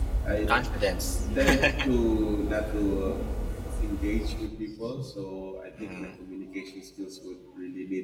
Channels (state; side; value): identical; both; correlation 1.00